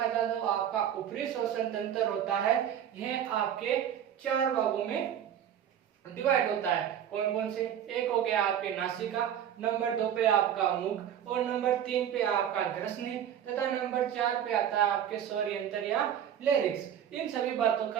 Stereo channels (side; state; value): left; quieter; 9.7 dB